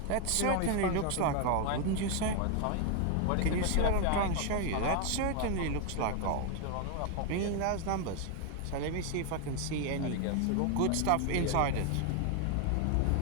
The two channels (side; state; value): both; different; correlation 0.01